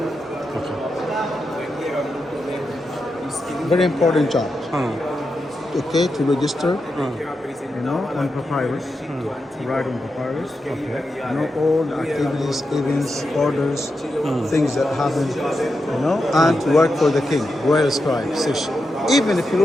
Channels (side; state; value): both; normal; correlation 0.88